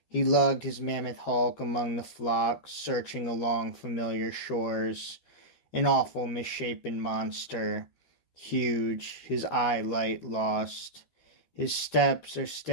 He lugged his mammoth hulk among the flocks, searching along familiar shores, an awful misshapen monster, huge, his eye light lost. His steps are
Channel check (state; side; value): late; right; 13 ms